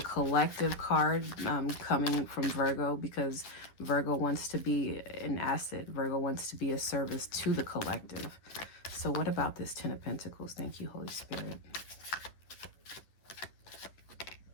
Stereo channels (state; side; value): late; right; 11 ms